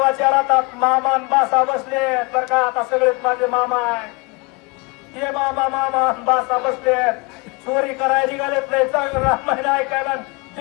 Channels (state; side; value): quieter; right; 27.9 dB